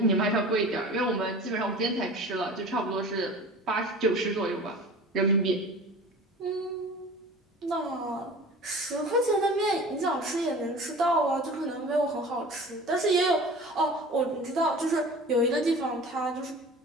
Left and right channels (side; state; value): both; normal; correlation 0.40